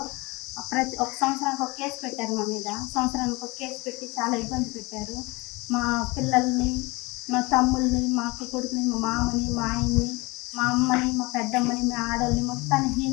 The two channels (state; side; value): quieter; right; 24.5 dB